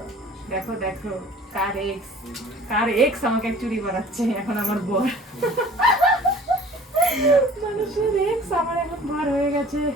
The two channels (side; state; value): both; normal; correlation 0.49